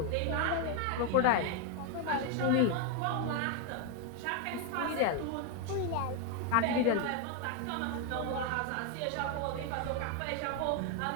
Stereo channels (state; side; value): different; both; correlation 0.01